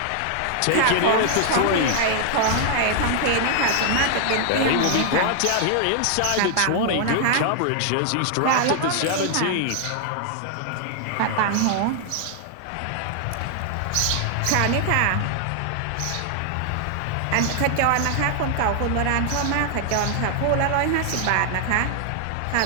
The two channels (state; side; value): different; both; correlation 0.00